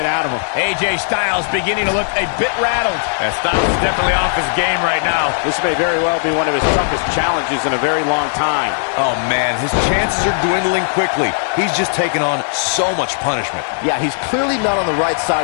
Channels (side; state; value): right; silent; digital silence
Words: out of him. AJ Styles beginning to look a bit rattled. Styles is definitely off his game right now. This may very well be one of his toughest challenges in a very long time. Oh, man, his chances are dwindling quickly. He's just taken on so much punishment. Yeah, he's clearly not on the right